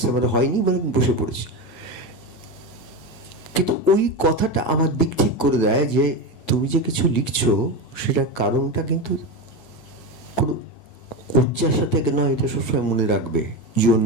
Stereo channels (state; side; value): late; right; 9.1 ms